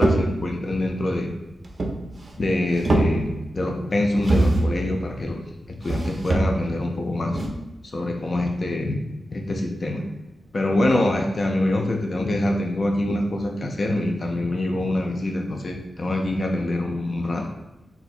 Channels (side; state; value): both; normal; correlation 0.91